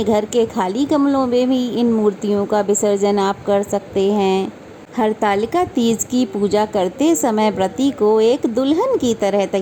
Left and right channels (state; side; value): identical; both; correlation 1.00